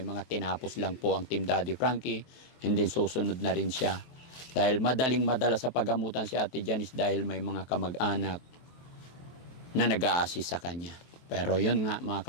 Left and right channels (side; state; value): right; late; 23 ms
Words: tinapos lang po ang Team Daddy Frankie, hindi susunod na rin siya. Dahil madaling madala sa pagamutan si Ate Janice dahil may mga kamag-anak na nag-a-assist sa kanya. Pero yun nga mga